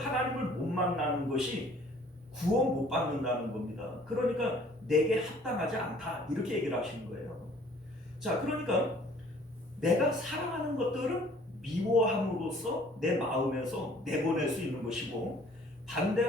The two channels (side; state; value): both; normal; correlation 0.55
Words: 못 만나는 것이 구원 못 받는다는 겁니다. 그러니까 내게 합당하지 않다, 이렇게 얘기를 하시는 거예요. 자, 그러니까 내가 사랑하는 것들은 미워함으로써 내 마음에서 내보낼 수 있는 것이고,